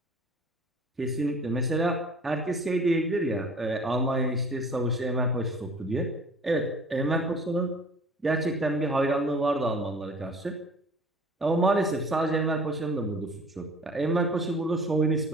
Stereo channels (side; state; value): both; normal; correlation 0.48